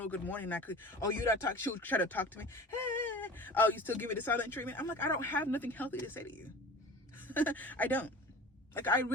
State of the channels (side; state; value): both; normal; correlation 0.38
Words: good morning. You don't talk. She would try to talk to me. Hey, oh, you still give me the silent treatment? I'm like, I don't have nothing healthy to say to you. I don't. Like, I